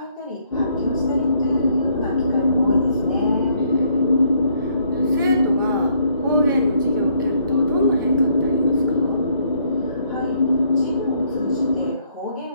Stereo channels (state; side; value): inverted; both; correlation -0.68